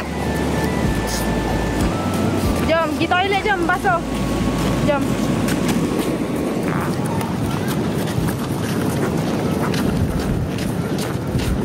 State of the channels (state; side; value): identical; both; correlation 1.00